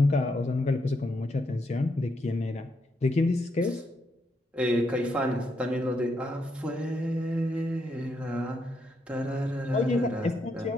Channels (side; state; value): both; normal; correlation 0.79